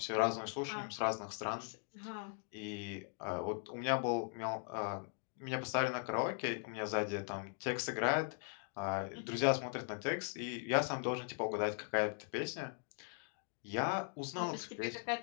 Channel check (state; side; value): silent; right; 51 dB below the other